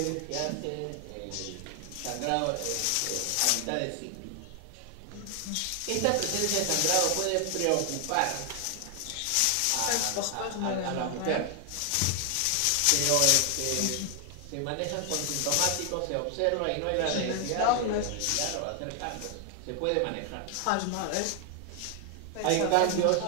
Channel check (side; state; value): both; different; correlation 0.00